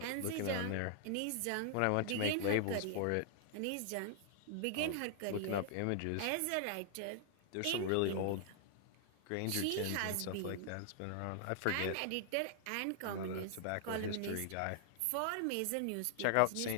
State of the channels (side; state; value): both; different; correlation -0.01